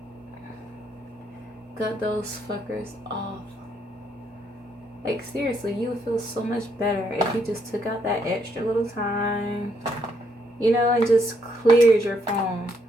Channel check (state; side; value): normal; both; correlation 0.73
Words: Cut those fuckers off. Like, seriously, you would feel so much better if you just took out that extra little time, you know, and just cleared your phone